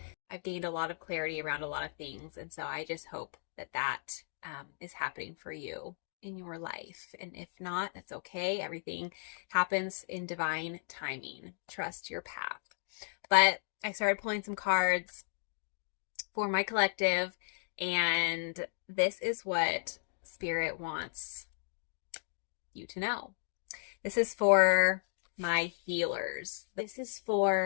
I've gained a lot of clarity around a lot of things. And so I just hope that is happening for you in your life. And if not, that's okay. Everything happens in divine timing. Trust your path. But I started pulling some cards for my collective, and this is what Spirit wants you to know. This is for my healers. This is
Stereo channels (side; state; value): right; silent; digital silence